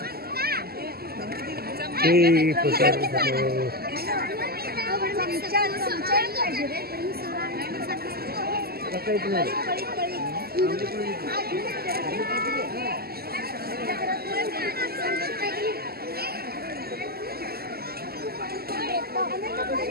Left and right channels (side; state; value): left; late; 0.45 ms